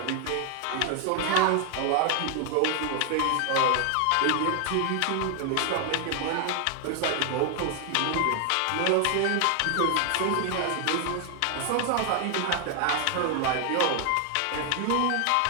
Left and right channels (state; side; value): different; both; correlation 0.00